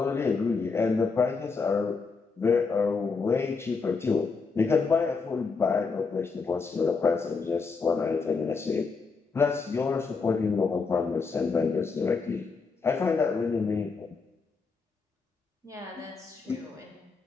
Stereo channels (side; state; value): right; quieter; 4.7 dB